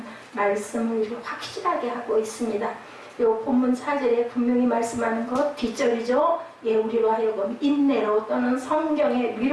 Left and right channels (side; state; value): both; identical; correlation 1.00